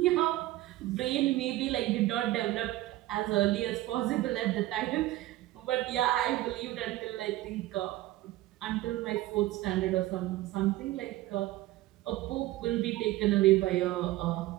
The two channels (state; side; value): quieter; left; 16.7 dB